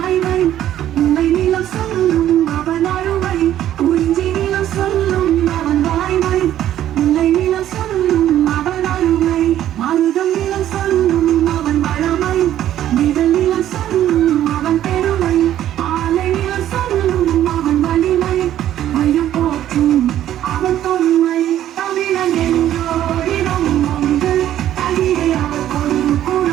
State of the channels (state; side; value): quieter; left; 12.0 dB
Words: உண்மை நிலம் சொல்லும் அவன் அருமை குறிஞ்சி நிலம் சொல்லும் அவன் வாய்மை உண்மை நிலம் சொல்லும் அவன் அருமை மருதம் நிலம் சொல்லும் அவன் வளமை நிழல் நிலம் சொல்லும் அவன் பெருமை ஆலை நிலம் சொல்லும் அவன் வலிமை மையம் போற்றும் அவன் தொன்மை தமிழன் என்றோரிடம் உண்டு தமிழே அவர்கொரு